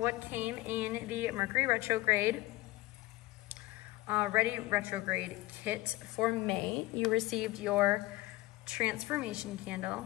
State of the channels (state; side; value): quieter; right; 18.9 dB